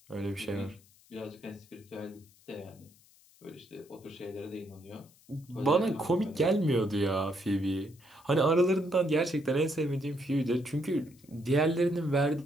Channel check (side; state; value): left; noise; hiss, 28 dB below the sound